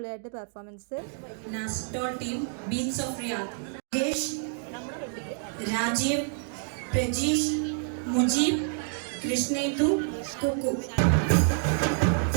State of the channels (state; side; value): silent; left; 59 dB below the other